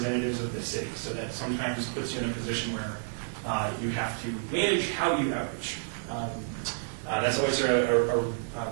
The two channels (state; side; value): silent; left; 58 dB below the other